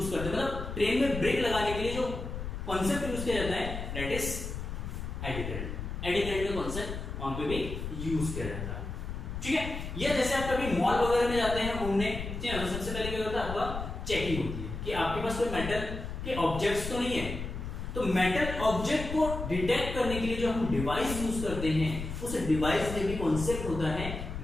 करते हैं। मतलब ट्रेन में ब्रेक लगाने के लिए जो कॉन्सेप्ट यूज किया जाता है that is eddy current. Eddy current का कॉन्सेप्ट वहां पे भी यूज किया जाता है। ठीक है, ये जैसे आप कभी मॉल वगैरह में जाते हैं घूमने, ठीक है, तो सबसे पहले क्या होता है, आपका चेकिंग होती है कि आपके पास कोई मेटल के ऑब्जेक्ट्स तो नहीं है। तो मेटल ऑब्जेक्ट को डिटेक्ट करने के लिए जो हम डिवाइस यूज करते हैं, उस डिवाइस में भी कॉन्सेप्ट होता है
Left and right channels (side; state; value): left; noise; rumble, 6 dB below the sound